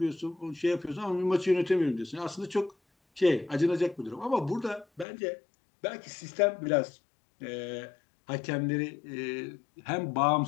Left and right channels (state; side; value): drops out; right; at 5.1 s